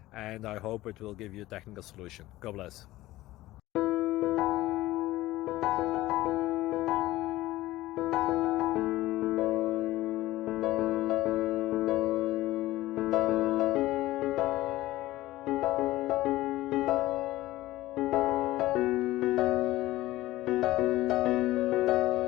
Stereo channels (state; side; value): quieter; right; 16.9 dB